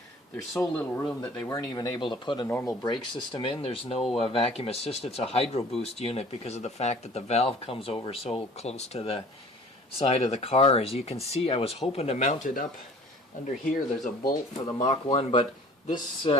There's so little room that they weren't even able to put a normal brake system in. There's no vacuum assist. It's a hydro boost unit because of the fact that the valve comes over so close to the side of the car. As you can see, I was hoping to mount it up under here. There's a bolt for the Mach 1, but this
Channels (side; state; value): both; normal; correlation 0.49